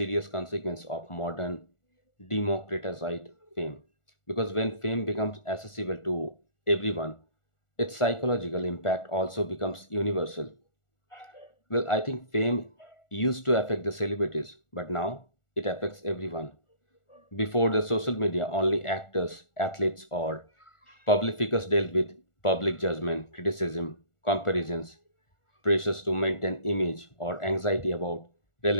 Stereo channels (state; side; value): late; right; 1.4 ms